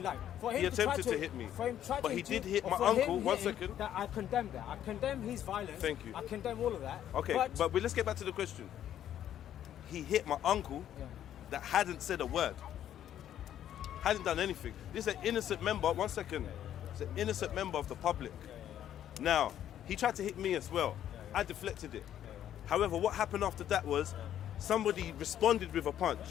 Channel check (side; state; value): right; quieter; 10.9 dB